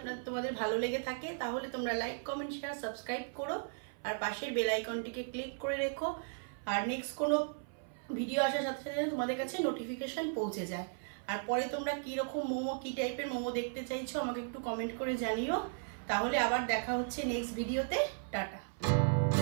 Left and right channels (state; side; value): silent; left; 54 dB below the other